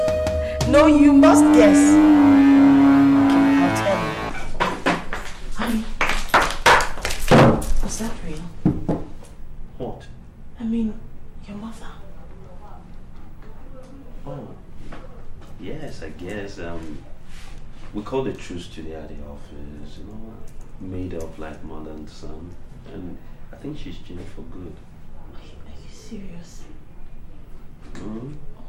No, you must guess. Okay, I'll tell you. Honey, was that real? What? I mean, your mother. Oh, yes, I guess. We called a truce today at the office, you know, made up like mother and son. And I think she's changed for good. Are you serious? Mm-hmm. Oh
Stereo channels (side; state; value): both; identical; correlation 1.00